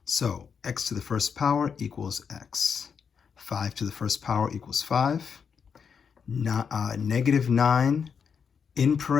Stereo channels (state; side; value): quieter; right; 6.5 dB